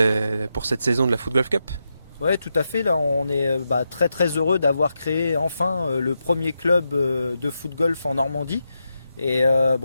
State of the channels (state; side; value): inverted; both; correlation -0.86